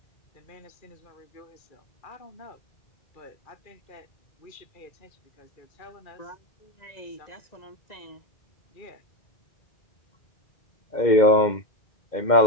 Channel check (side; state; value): right; late; 2.1 ms